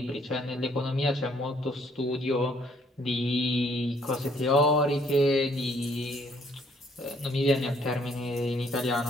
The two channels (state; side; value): normal; both; correlation 0.65